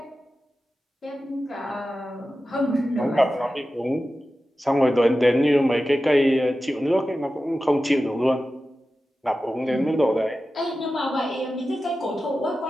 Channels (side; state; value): both; normal; correlation 0.93